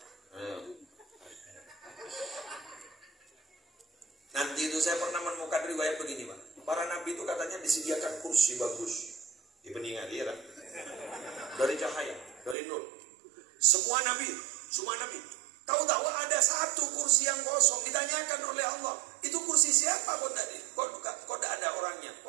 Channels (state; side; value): drops out; left; at 12.6 s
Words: Nanti itu saya pernah menemukan riwayat begini, Pak. Para nabi itu katanya disediakan kursi bagus di peninggal dia, dari cahaya, dari nur. Semua nabi. Tahu-tahu ada satu kursi yang kosong, ditanyakan oleh Allah, itu kursi kursi siapa kok tidak ada orangnya,